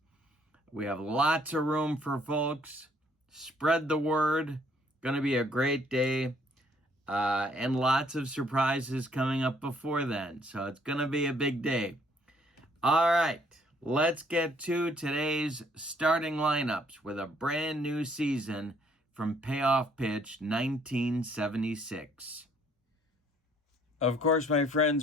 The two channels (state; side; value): normal; both; correlation 0.63